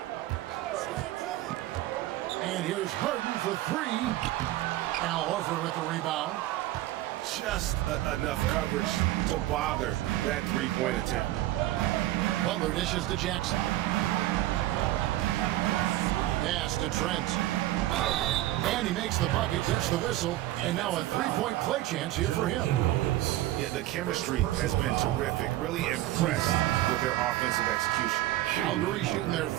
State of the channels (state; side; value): quieter; left; 15.5 dB